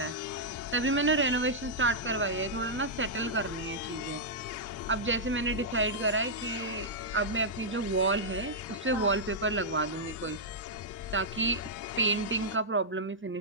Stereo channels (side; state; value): both; normal; correlation -0.08